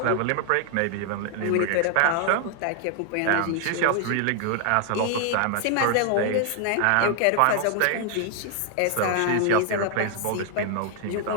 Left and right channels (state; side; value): different; both; correlation 0.00